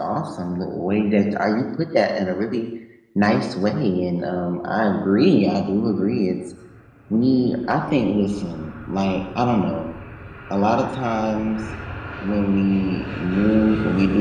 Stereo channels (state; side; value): identical; both; correlation 1.00